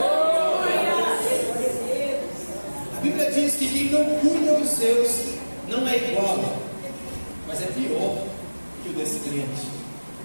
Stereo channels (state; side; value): inverted; both; correlation -1.00